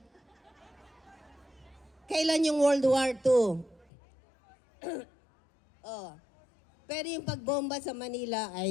Kailan yung World War II? Oh. Pero yung pagbomba sa Manila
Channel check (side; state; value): right; drops out; at 3.9 s